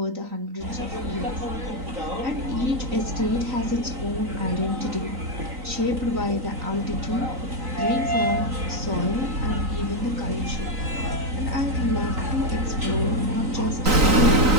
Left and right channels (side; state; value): left; late; 3.9 ms